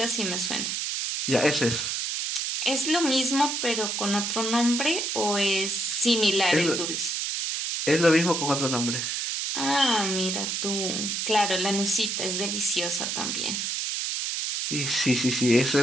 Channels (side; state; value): right; noise; hiss, 1 dB below the sound